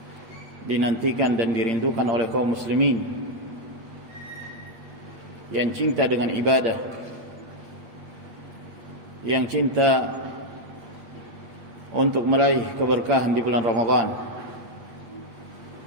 dinantikan dan dirindukan oleh kaum muslimin yang cinta dengan ibadah, yang cinta untuk meraih keberkahan di bulan Ramadan.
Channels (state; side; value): late; left; 8.7 ms